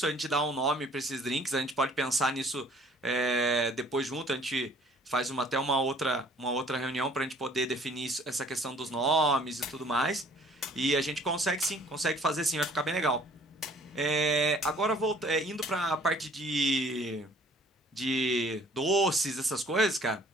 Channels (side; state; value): both; normal; correlation 0.56